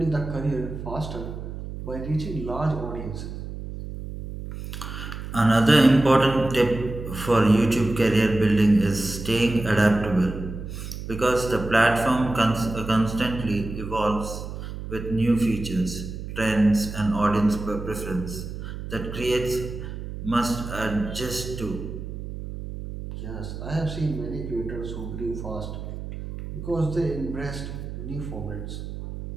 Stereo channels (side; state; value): right; noise; hum, 8 dB below the sound